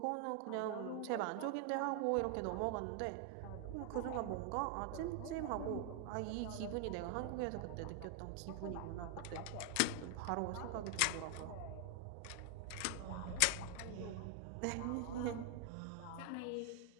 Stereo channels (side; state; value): both; different; correlation 0.00